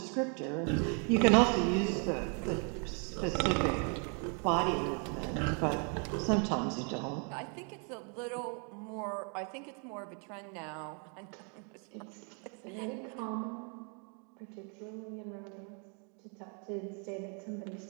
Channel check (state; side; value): quieter; left; 39.3 dB